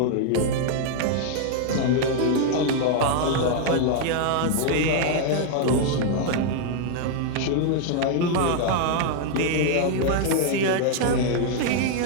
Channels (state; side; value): different; both; correlation 0.00